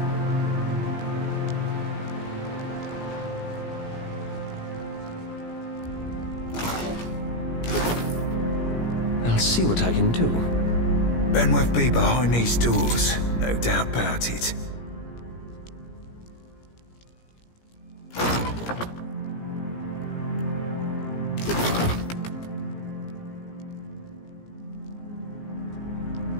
I'll see what I can do. Benwith be behind these doors, no doubt about it.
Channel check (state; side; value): late; right; 17 ms